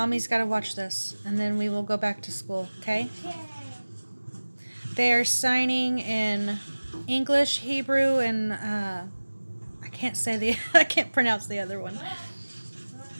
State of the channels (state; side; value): inverted; both; correlation -1.00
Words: got to watch this, and then we will go back to school, okay? They are signing in English, Hebrew, and I can't say I can't pronounce the other one.